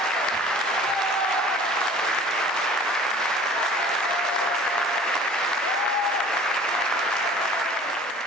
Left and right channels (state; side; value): normal; both; correlation 0.47